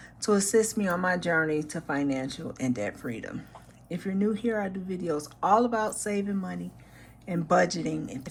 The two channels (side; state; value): both; identical; correlation 1.00